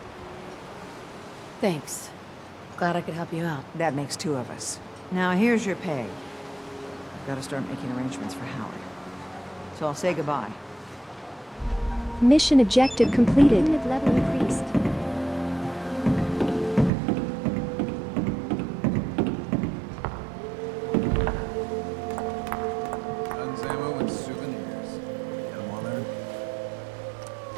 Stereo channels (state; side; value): drops out; left; at 16.9 s